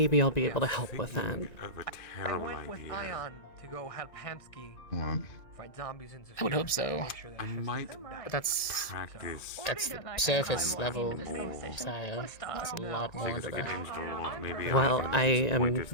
I'll be able to help with that. Of a terrible idea. To go help Hamsky fight zombies and I would hope so. I might But that's practice. the surface level Saya. There's a lot more into that. Well, I am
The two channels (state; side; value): late; right; 1.9 ms